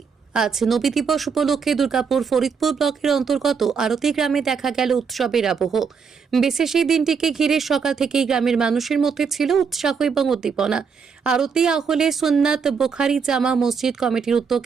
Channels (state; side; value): quieter; left; 5.9 dB